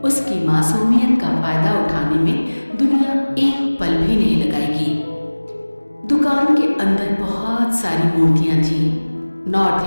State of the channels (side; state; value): both; inverted; correlation -1.00